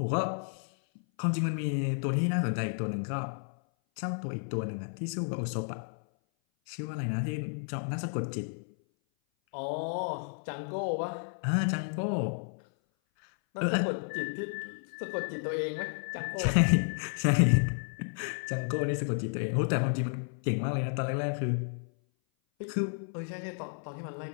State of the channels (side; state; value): right; silent; 56 dB below the other